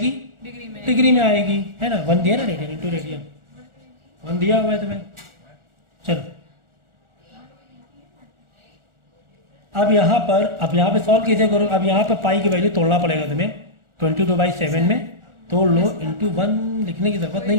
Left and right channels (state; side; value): late; left; 1.4 ms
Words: डिग्री में। डिग्री में आएगी, है ना। 1 दिया ना, रेडियन इंटू रेडियन 1 दिया हुआ है तुम्हें। चलो अब यहाँ पे सॉल्व कैसे करो, अब यहाँ पे पाई की वैल्यू तोड़ना पड़ेगा तुम्हें 22/7 में तोड़ लो, इंटू 1 लिखने की ज़रूरत